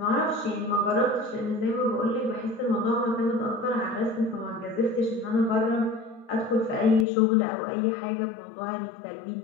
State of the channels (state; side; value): drops out; right; at 7.1 s